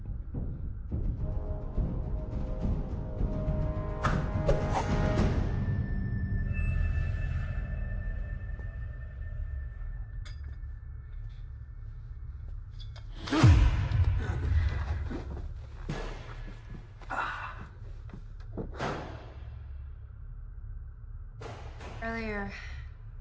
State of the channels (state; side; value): identical; both; correlation 1.00